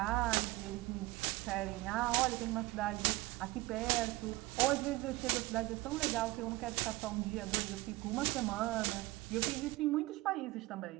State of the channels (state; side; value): quieter; left; 19.8 dB